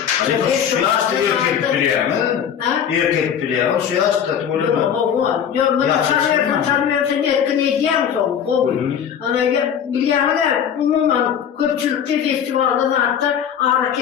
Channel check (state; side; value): quieter; right; 8.5 dB